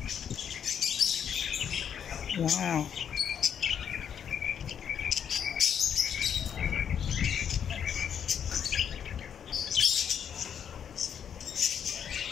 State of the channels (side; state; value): right; quieter; 8.3 dB